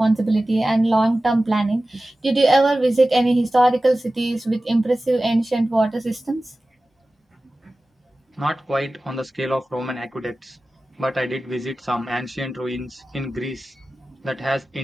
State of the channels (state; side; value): normal; both; correlation 0.96